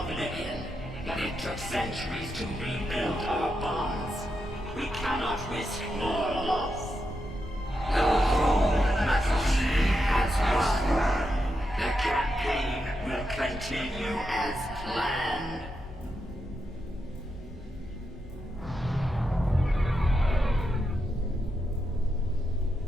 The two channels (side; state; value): both; normal; correlation 0.85